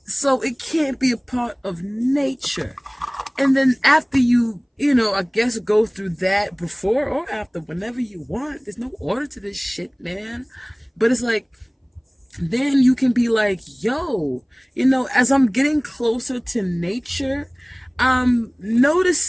So it can't be a part of nature. And then after you, I guess go through that before or after, whenever you want. There's no order to this shit, man. But it's like, then you can be like, yo, as I'm getting closer to nature, I'm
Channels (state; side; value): identical; both; correlation 1.00